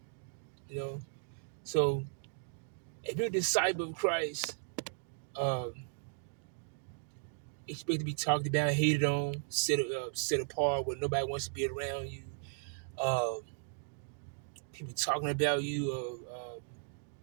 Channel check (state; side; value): silent; left; digital silence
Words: You know, so if you're a disciple of Christ, um, expect to be talked about, hated on, set apart, where nobody wants to be around you. Um, People talking about you.